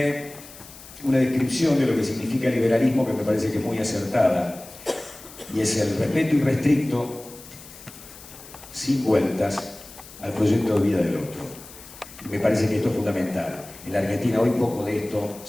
una descripción de lo que significa liberalismo que me parece que es muy acertada, y es el respeto irrestricto, sin vueltas, al proyecto de vida del otro. Y me parece que esto es fundamental. En la Argentina hoy poco de esto,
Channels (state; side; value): noise; left; hiss, 18 dB below the sound